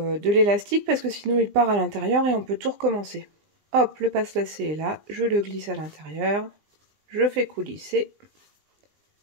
l'élastique parce que sinon il part à l'intérieur et on peut tout recommencer. Hop, le passe-lacet est là, je le glisse à l'intérieur, je fais coulisser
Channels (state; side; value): late; left; 20 ms